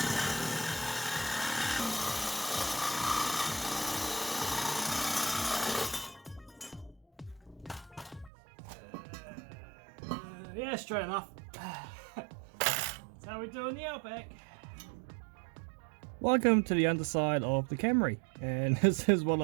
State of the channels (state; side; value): drops out; left; at 8.3 s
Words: Yeah, straight enough. That's how we do in the Outback. Welcome to the underside of the Camry, and this is what